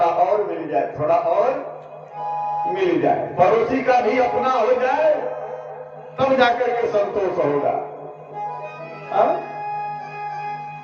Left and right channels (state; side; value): identical; both; correlation 1.00